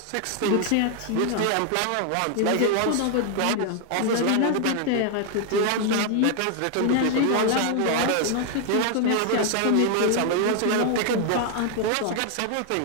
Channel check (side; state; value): both; different; correlation 0.00